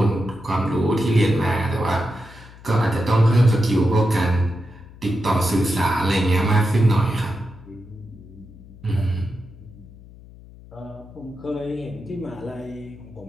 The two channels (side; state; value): left; noise; hum, 20 dB below the sound